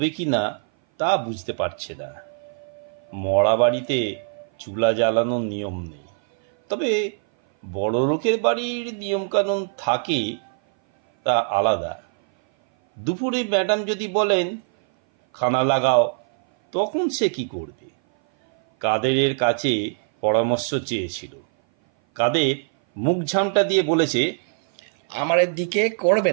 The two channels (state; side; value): silent; left; 58 dB below the other